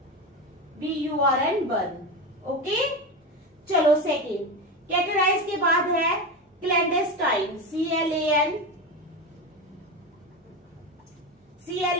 BURN, burn. Okay, चलो सेकेंड। कैटेराइज के बाद है क्लैंडेस्टाइन, CLAN,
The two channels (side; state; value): both; normal; correlation 0.20